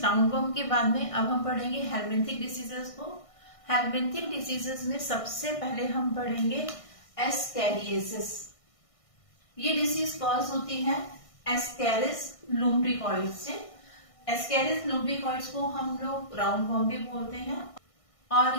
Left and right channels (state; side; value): late; right; 1.6 ms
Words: राउंडवर्म के बाद में अब हम पढ़ेंगे हेलमिंथिक डिसीजेस को। हेलमिंथिक डिसीजेस में सबसे पहले हम पढ़ेंगे एस्कैरियासिस। ये डिसीज कॉज होती है एस्कैरिस लुम्ब्रिकॉइड्स से। एस्कैरिस लुम्ब्रिकॉइड्स को हम लोग राउंडवर्म भी बोलते हैं।